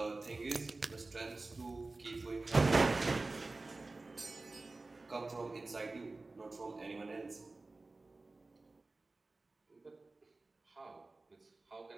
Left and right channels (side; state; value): left; quieter; 3.3 dB